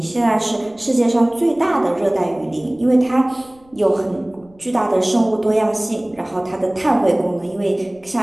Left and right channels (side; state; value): left; noise; rumble, 29 dB below the sound